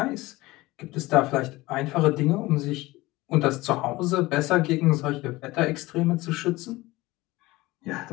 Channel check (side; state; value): right; quieter; 19.7 dB